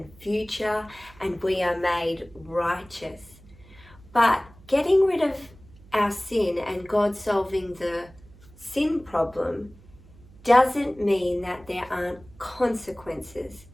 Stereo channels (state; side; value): noise; right; hum, 24 dB below the sound